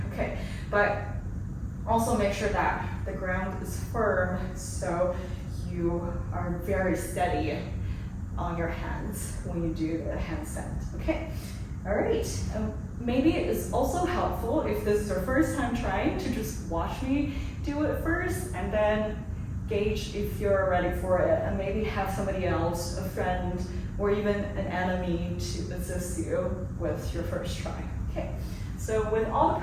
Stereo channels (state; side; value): identical; both; correlation 1.00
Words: Okay, but also make sure that the ground is firm so you are very steady on your hands when you do the handstand. Okay, all right. Maybe it's also helpful if this is your first time trying to just watch me do it first and then gauge if you're ready for it, and maybe have somebody else, a friend, or even an enemy to assist you with your first try. Okay. So with all the